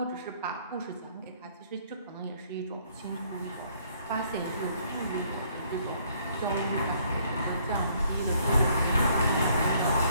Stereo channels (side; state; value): both; inverted; correlation -0.65